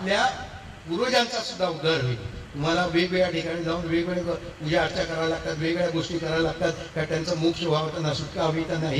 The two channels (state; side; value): identical; both; correlation 1.00